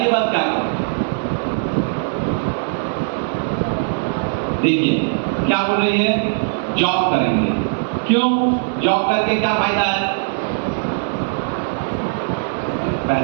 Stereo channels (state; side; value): silent; left; 66 dB below the other